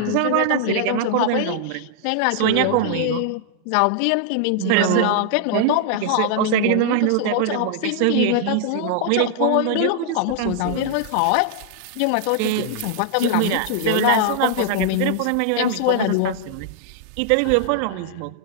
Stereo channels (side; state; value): both; different; correlation -0.01